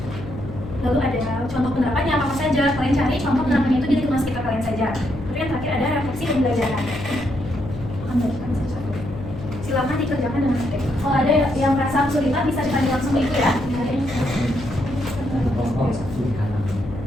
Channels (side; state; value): left; noise; hum, 11 dB below the sound